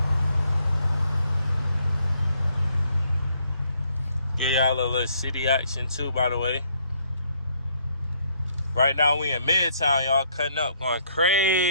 Give y'all a little city action too, by the way. Right now we in Midtown, y'all, cutting up, going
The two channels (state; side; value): inverted; both; correlation -0.69